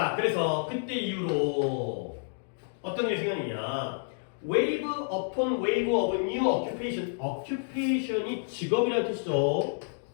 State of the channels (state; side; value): silent; right; digital silence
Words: 그래서 그때 이후로 어떤 일이 생겼느냐? Wave upon wave of new occupation. occupation이 직업이라는 뜻이죠.